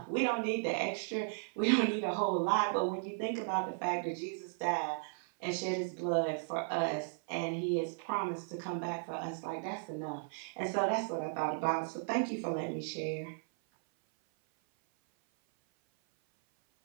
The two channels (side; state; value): left; silent; 54 dB below the other